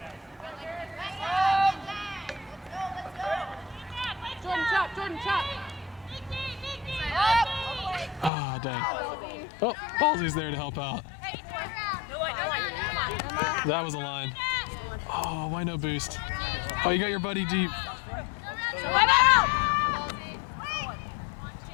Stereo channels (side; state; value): right; drops out; at 8.3 s